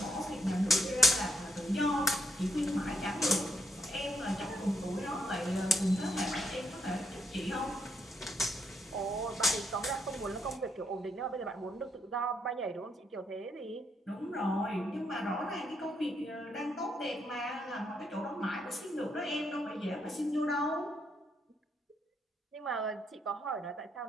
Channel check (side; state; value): both; normal; correlation 0.76